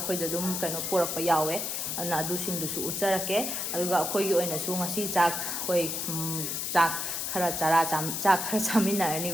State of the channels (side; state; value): left; noise; hiss, 2 dB below the sound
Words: अखोइदा दुम कनो पोरप यावे अना अदुसिंगदुसु उचरके अदुगा अखोइगी ओइनासु ngasi चाक होई चाक खरा चाक खरा चामिनारनि